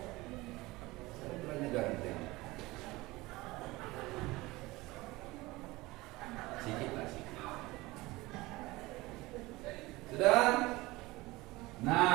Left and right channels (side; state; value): left; quieter; 20.8 dB